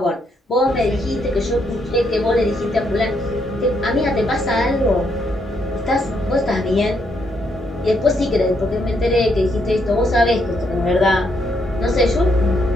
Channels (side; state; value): both; normal; correlation 0.75